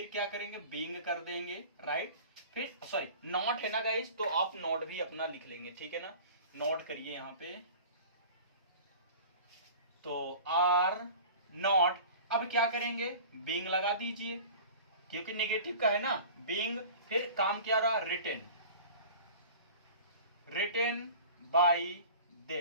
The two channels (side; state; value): both; inverted; correlation -0.40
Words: क्या करेंगे, बीइंग कर देंगे, राइट। फिर सॉरी नॉट है ना गाइस, तो आप नॉट भी अपना लिख लेंगे, ठीक है ना। नॉट करिए यहाँ पे, तो आर नॉट। अब क्या करेंगे, बीइंग लगा दीजिए, क्योंकि नेगेटिव का है ना, बीइंग। फिर काम क्या रहा, written, written by